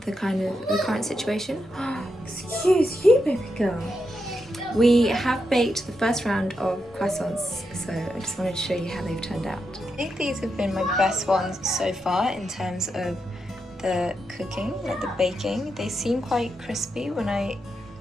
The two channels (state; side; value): normal; both; correlation 0.85